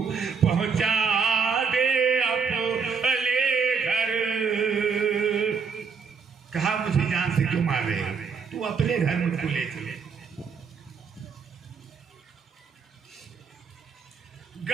पहुंचा दे अपने घर। कहा मुझे जान से क्यों मार रहे हो, तू अपने घर मुझको ले चले।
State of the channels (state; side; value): quieter; left; 5.7 dB